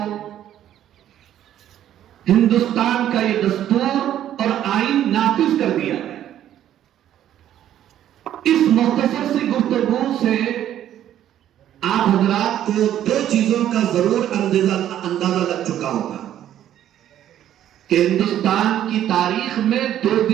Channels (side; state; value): left; quieter; 11.4 dB